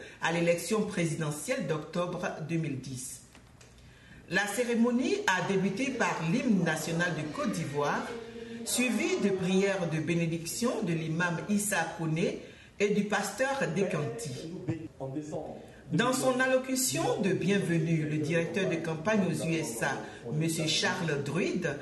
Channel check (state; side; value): identical; both; correlation 1.00